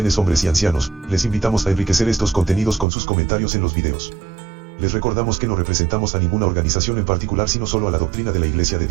hombres y ancianos. Les invitamos a enriquecer estos contenidos con sus comentarios en los videos. Les recordamos que no representamos a ninguna organización en particular, sino solo a la doctrina de la Iglesia de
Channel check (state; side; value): drops out; left; at 2.9 s